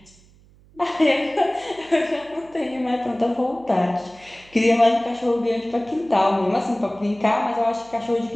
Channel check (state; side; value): noise; right; hum, 28 dB below the sound